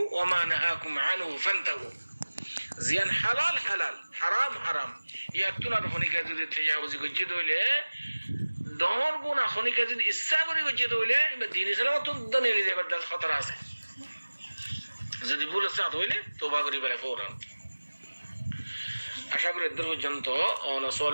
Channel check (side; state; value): both; inverted; correlation -1.00